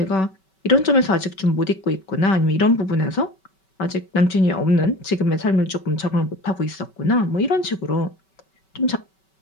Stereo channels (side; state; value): right; late; 5.2 ms